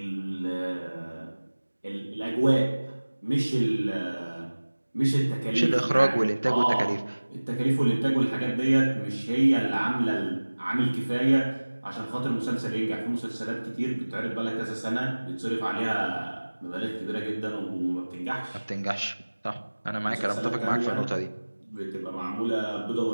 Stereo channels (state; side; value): inverted; both; correlation -1.00